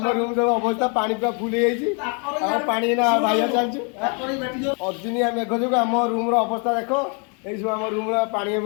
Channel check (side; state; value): right; quieter; 36.4 dB